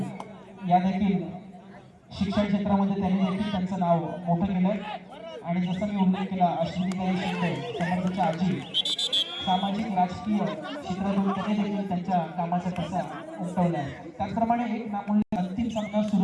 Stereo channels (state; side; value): identical; both; correlation 1.00